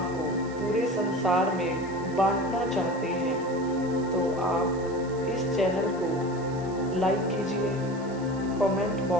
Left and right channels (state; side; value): noise; right; hiss, 23 dB below the sound